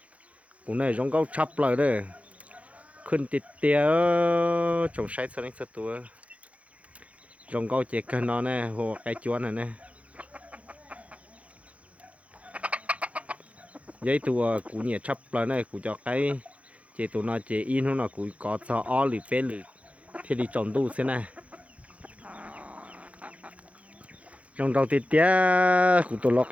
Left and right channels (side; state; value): left; late; 0.065 ms